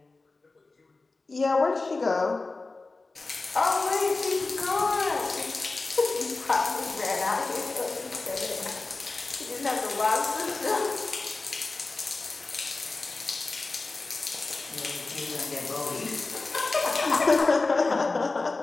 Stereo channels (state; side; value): quieter; right; 3.6 dB